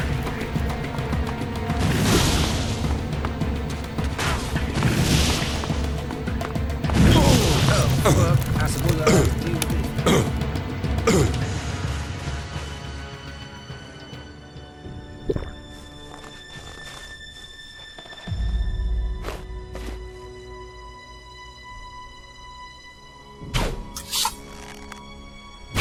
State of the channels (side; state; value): both; identical; correlation 1.00